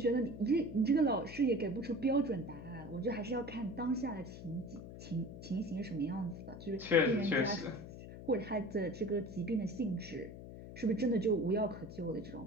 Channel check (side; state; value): left; noise; hum, 12 dB below the sound